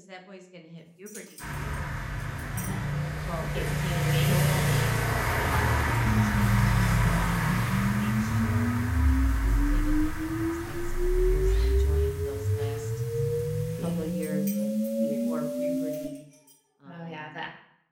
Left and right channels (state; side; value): identical; both; correlation 1.00